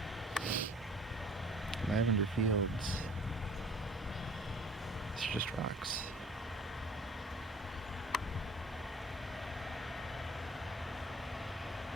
Lavender fields. It's just rocks.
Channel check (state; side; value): normal; both; correlation 0.51